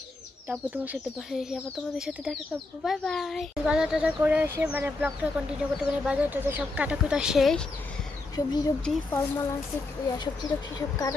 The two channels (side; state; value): right; quieter; 3.3 dB